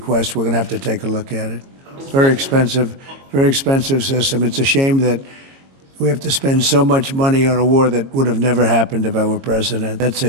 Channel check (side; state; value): left; late; 22 ms